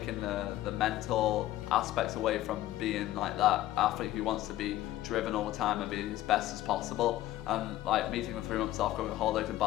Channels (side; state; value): right; quieter; 14.7 dB